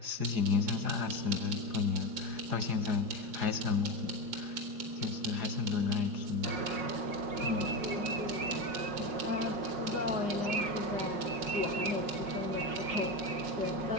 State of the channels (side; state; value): left; late; 5.5 ms